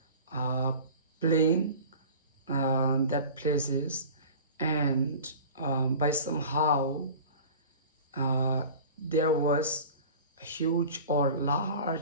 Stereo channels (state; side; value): inverted; both; correlation -0.39